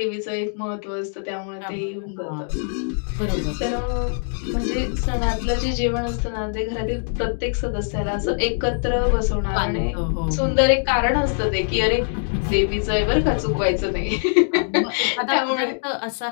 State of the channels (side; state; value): right; silent; 64 dB below the other